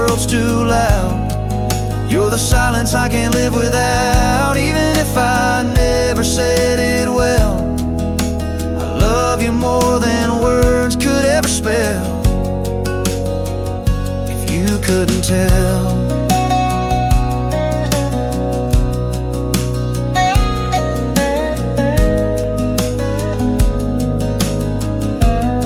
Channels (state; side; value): identical; both; correlation 1.00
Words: too loud. You're the silence I can't live without, even if I never said it well. I love you more than words could ever spell. If you couldn't tell.